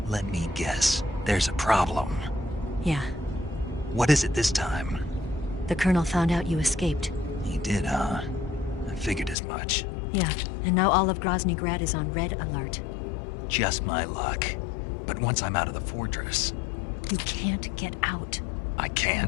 Let me guess. There's a problem. Yeah. What is it this time? The Colonel found out you escaped. He did, huh? I figured as much. Yeah, and now all of Grozny Grad is on red alert. Just my luck. But once I'm out of the fortress... You can't get out. I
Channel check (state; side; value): drops out; right; at 9.3 s